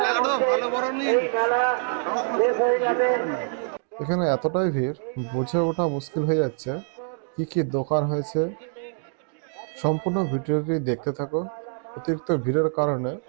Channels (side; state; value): left; silent; 62 dB below the other